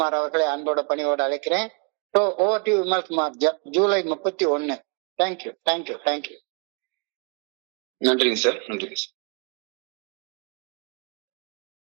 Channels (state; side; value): quieter; left; 35.5 dB